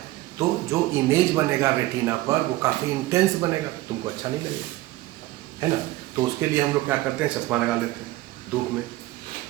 तो जो इमेज बनेगा रेटिना पर वो काफ़ी इंटेंस बनेगा, तुमको अच्छा नहीं लगेगा, है ना। तो उसके लिए हम लोग क्या करते हैं, चश्मा लगा लेते हैं धूप में।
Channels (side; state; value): left; quieter; 17.9 dB